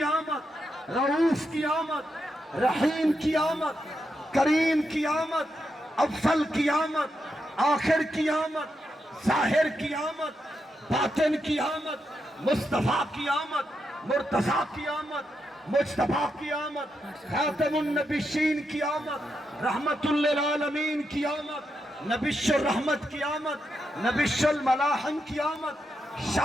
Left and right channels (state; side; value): normal; both; correlation 0.84